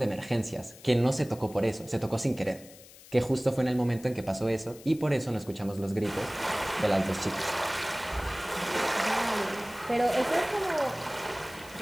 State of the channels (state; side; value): noise; left; hiss, 20 dB below the sound